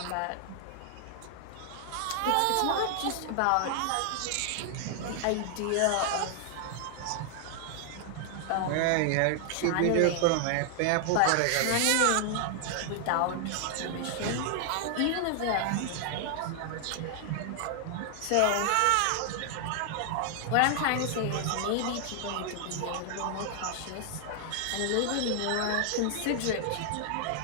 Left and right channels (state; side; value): different; both; correlation 0.00